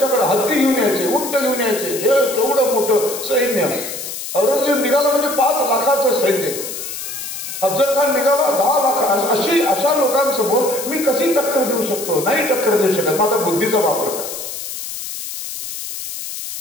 हत्ती घेऊन यायचे, उंट घेऊन यायचे, हे केवढं मोठं सैन्य. औरंगजेब निघाला म्हणजे 5 लाखाचं सैन्य. अफजल खान निघाला 10 लाख. अशा लोकांसमोर मी कशी टक्कर देऊ शकतो? नाही टक्कर देऊ शकत. मग आता बुद्धीचा वापर करायचा.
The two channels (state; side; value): noise; left; hiss, 8 dB below the sound